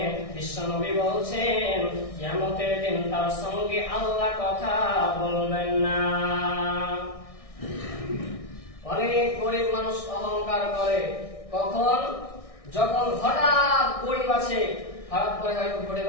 বিশ্বনবী বলছেন কিয়ামতের দিন তার সঙ্গে আল্লাহ কথা বলবেন না। অনেক গরিব মানুষ অহংকার করে কখন? যখন হঠাৎ গরিব আছে, হঠাৎ করে হয়তো ঘটে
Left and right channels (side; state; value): right; late; 1.6 ms